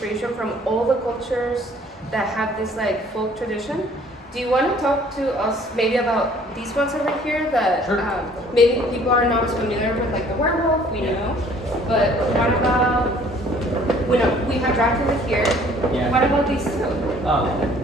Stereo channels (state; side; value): normal; both; correlation 0.56